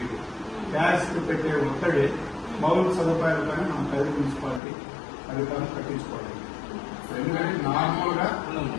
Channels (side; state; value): right; drops out; at 4.6 s